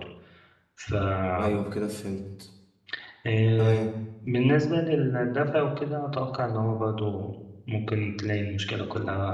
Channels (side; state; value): both; identical; correlation 1.00